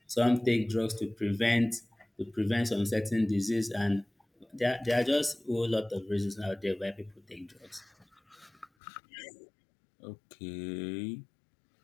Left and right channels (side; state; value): right; drops out; at 8.7 s